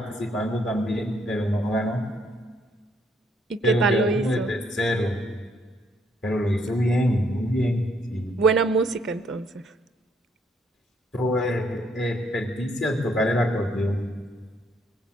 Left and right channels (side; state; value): both; normal; correlation 0.70